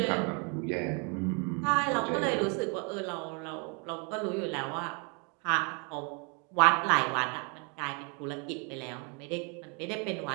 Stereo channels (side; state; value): left; quieter; 34.5 dB